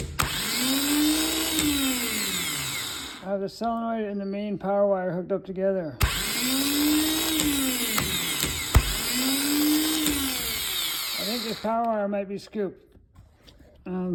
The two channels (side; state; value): both; identical; correlation 1.00